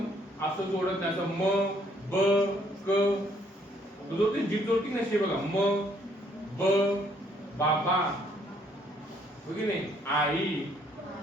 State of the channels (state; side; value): normal; both; correlation 0.66